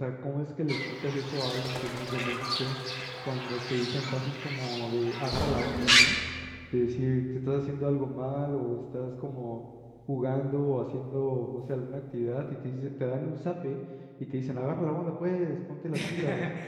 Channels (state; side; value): identical; both; correlation 1.00